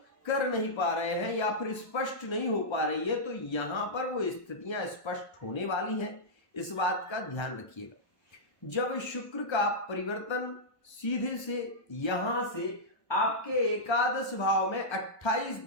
कर नहीं पा रहे हैं या फिर स्पष्ट नहीं हो पा रही है। तो यहां पर वो स्थितियां स्पष्ट होने वाली हैं, इस बात का ध्यान रखिएगा। जब शुक्र का परिवर्तन सीधे से यहां से आपके एकादश भाव में 28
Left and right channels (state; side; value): late; right; 1.3 ms